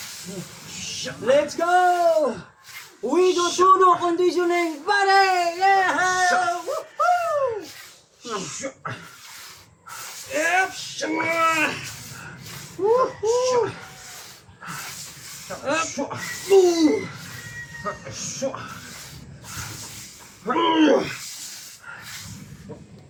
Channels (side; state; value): both; identical; correlation 1.00